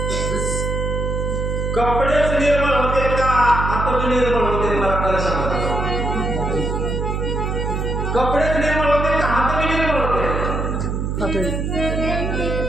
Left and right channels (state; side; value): noise; right; hum, 1 dB below the sound